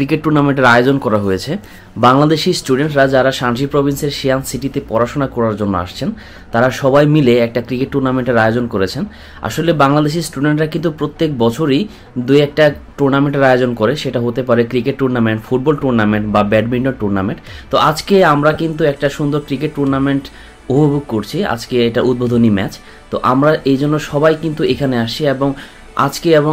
টুর্নামেন্টের আয়োজন করা হয়েছে। বাংলাদেশি স্টুডেন্টরা যারা শানজি প্রভিন্সের শিয়ান সিটিতে পড়াশোনা করার জন্য আসছেন, তারা সবাই মিলে একটা ক্রিকেট টুর্নামেন্টের আয়োজন করেছেন। আসলে বাংলাদেশি স্টুডেন্টরা কিন্তু প্রত্যেক বছরই দুই একটা টুর্নামেন্টের আয়োজন করে, সেটা হতে পারে ক্রিকেট টুর্নামেন্ট, ফুটবল টুর্নামেন্ট বা ব্যাডমিন্টন টুর্নামেন্ট। তো আজকে আমরা কিন্তু একটা সুন্দর ক্রিকেট টুর্নামেন্ট উপভোগ করছি। আজকে এটা উদ্বোধনী ম্যাচ, তো আমরা এই জন্য সবাই কিন্তু এখানে আসছি এবং আজকে এবং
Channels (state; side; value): identical; both; correlation 1.00